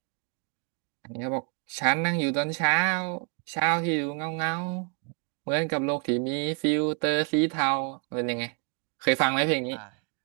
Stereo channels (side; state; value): left; quieter; 38.7 dB